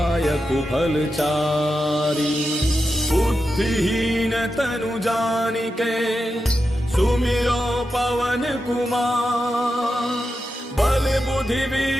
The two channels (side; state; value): both; normal; correlation 0.89